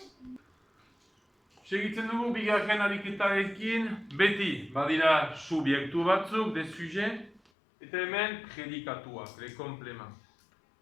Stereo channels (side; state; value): right; drops out; at 7.4 s